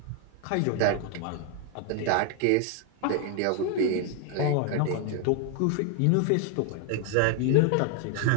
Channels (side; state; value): both; different; correlation 0.01